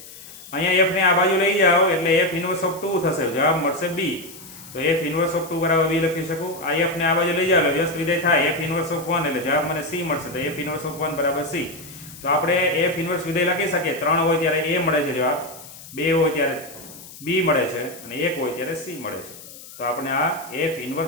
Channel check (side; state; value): left; noise; hiss, 17 dB below the sound